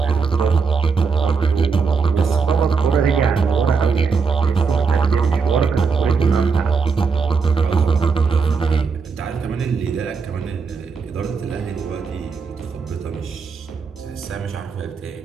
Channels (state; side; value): quieter; left; 5.2 dB